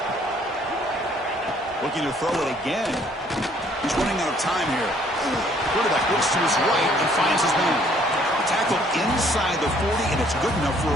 Looking to throw it again. He's running out of time here. Quarterback looks to his right and finds his man. Tackle inside the 40, and it's good enough for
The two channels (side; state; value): both; normal; correlation 0.62